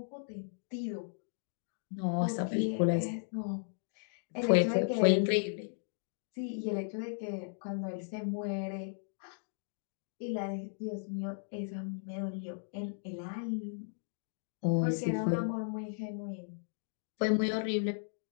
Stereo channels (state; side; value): silent; right; digital silence